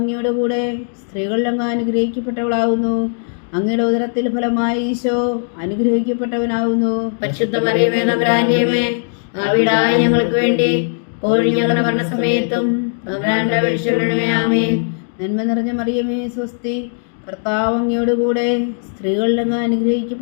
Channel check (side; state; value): right; silent; digital silence